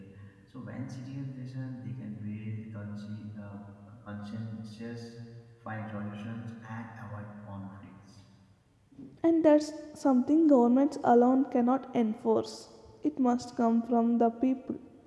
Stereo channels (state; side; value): identical; both; correlation 1.00